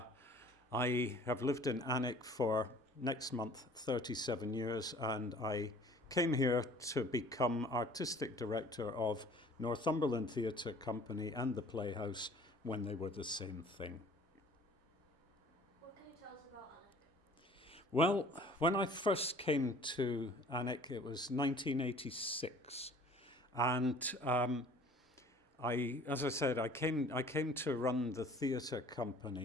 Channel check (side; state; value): both; normal; correlation 0.51